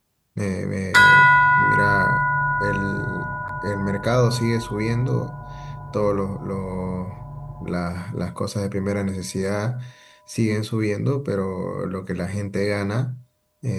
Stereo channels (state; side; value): identical; both; correlation 1.00